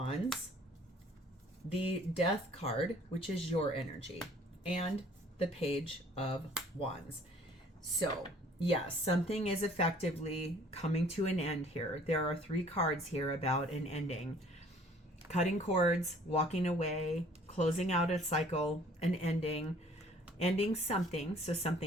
the Death card, which is your energy, and the Page of Wands. So yes, something is effectively coming to an end here. There are 3 cards here about an ending. Cutting cords, walking away, closing out a cycle, an ending something so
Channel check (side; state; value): both; normal; correlation 0.55